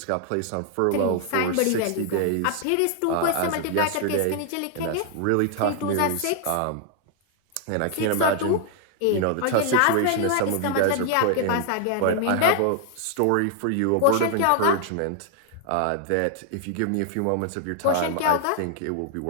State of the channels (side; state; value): both; different; correlation 0.00